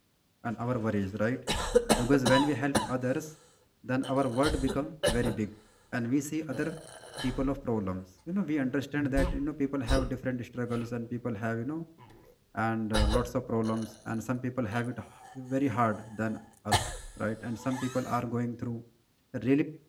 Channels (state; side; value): identical; both; correlation 1.00